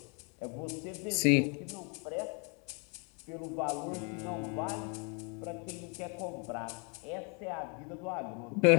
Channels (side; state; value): right; quieter; 35.4 dB